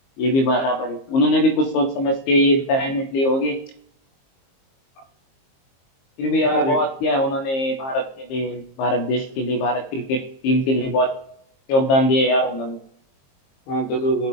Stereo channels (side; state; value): right; late; 22 ms